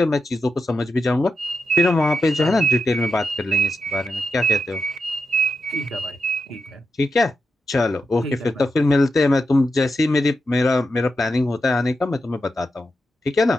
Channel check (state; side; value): normal; both; correlation 0.87